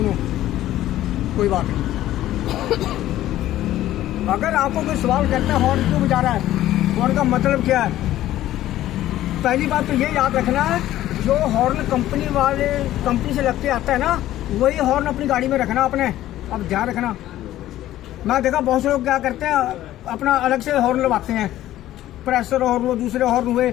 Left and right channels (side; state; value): right; quieter; 13.9 dB